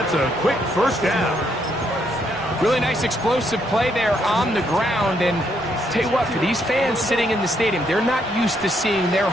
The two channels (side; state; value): both; normal; correlation 0.74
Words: a quick first down. Really nice explosive play there on the ground. And tell you what, for these fans sitting in the stadium, they're not used to seeing their